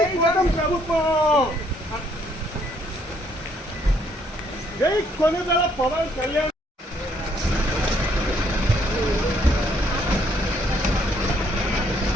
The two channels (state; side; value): normal; both; correlation 0.68